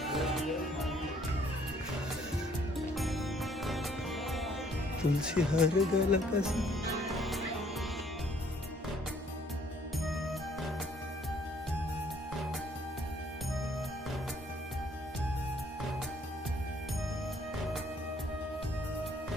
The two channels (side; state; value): both; normal; correlation 0.62